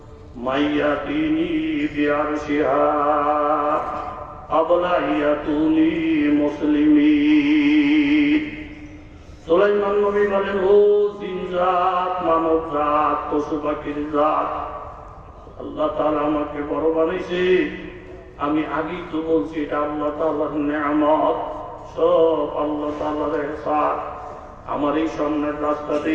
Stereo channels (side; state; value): both; identical; correlation 1.00